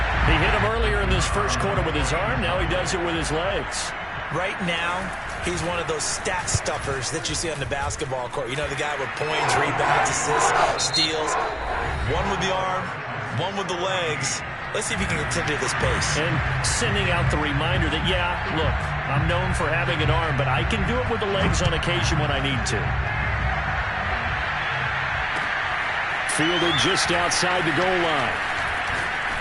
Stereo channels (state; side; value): identical; both; correlation 1.00